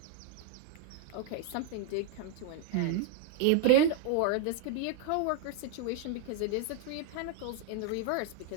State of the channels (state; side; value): different; both; correlation 0.01